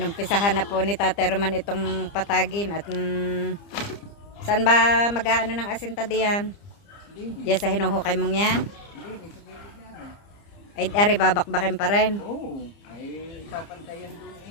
na po ni Tate Roman itong patagin at saan ba mag-aano ng asinta diyan? Diyan sa hinuhukay mong yan? Hindi, sa gilid na rin. Ay, ari babakbakin pa rin. Oo, ay tapantayan doon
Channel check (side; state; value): right; late; 30 ms